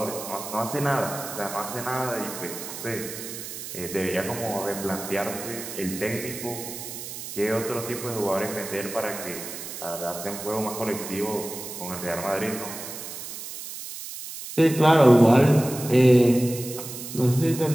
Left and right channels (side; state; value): right; noise; hiss, 9 dB below the sound